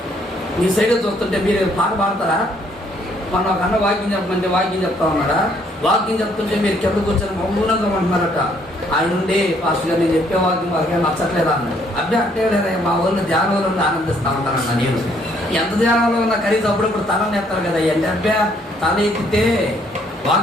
మీ సైడ్ చూస్తుంటే మీరు పాట పాడతారా? మన ఒక అన్న వాక్యం చెప్పమంటే వాక్యం చెప్తా ఉన్నాడా? వాక్యం చెప్తుంటే మీరు కింద కూర్చొని మౌనంగా అంటున్నారట. ఆయన ఉండి పాస్టర్ గారు నేను చెప్పే వాక్యం వాళ్ళకి నచ్చట్లేదా అన్నాడు. అబ్బే అంటే లేదా మా ఊళ్ళో ధ్యానంలో ఉండి ఆనందిస్తూ ఉంటానన్న. నేను ఎంత ధ్యానంలో ఉన్నా కనీసం అప్పుడప్పుడు తలని ఎత్తారు కదా. అంటే అబ్బే తల ఎత్తితే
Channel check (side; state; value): both; normal; correlation 0.66